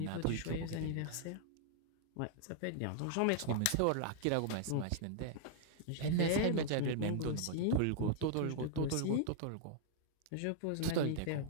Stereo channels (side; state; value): both; different; correlation -0.01